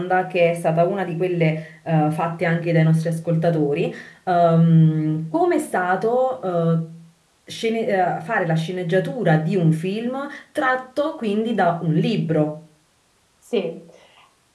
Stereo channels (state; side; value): identical; both; correlation 1.00